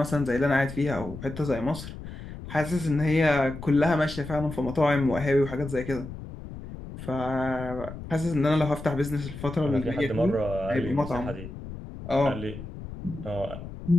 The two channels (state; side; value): noise; left; rumble, 11 dB below the sound